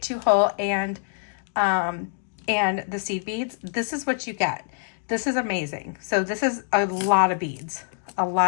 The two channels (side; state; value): right; silent; digital silence